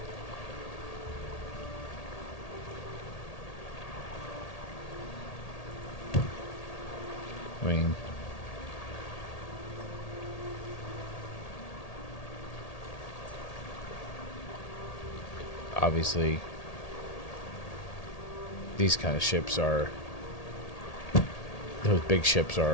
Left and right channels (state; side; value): late; right; 1.8 ms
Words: I mean, obviously, these kind of ships are, those big ships